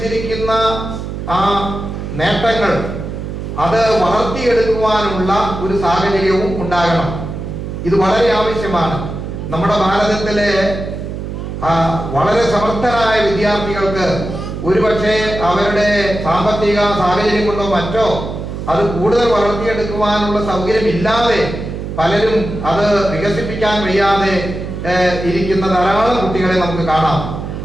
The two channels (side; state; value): right; noise; hum, 7 dB below the sound